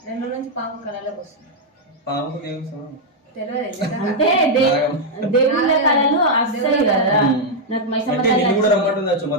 2 రోజుల నుంచి పాము కళలోకి వస్తుంది. పాముకు దేవుడు అంటే దేవుళ్ళ కళలు వస్తాయి కదా. నాకు నిన్ను కూడా రమ్మంటుందచ్చు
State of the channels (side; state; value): both; normal; correlation -0.02